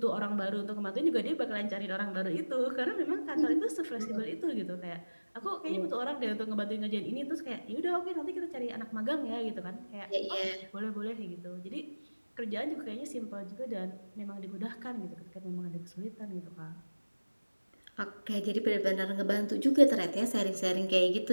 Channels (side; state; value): both; inverted; correlation -1.00